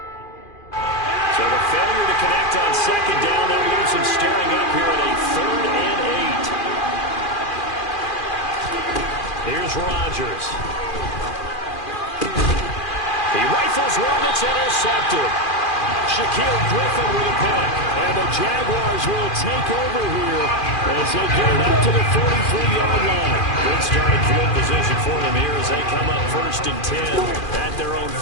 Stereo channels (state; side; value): late; right; 2.4 ms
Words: So the failure to connect on 2nd down, that leaves him staring up here at a 3rd and 8. Here's Rodgers. He rifles one that's intercepted. Shaquille Griffin with a pick. And the Jaguars will take over here as they get it up to the 43-yard line. Good starting field position for them here as they come up 1st and 10 at their own